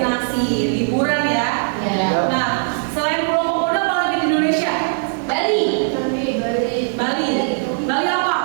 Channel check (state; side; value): silent; left; digital silence